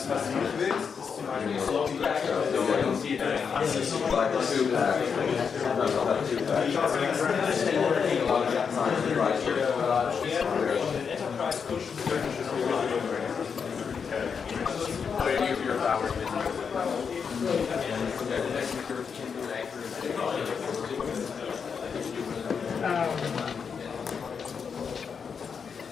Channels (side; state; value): right; quieter; 6.3 dB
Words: was du nicht willst, ist zum Beispiel so wie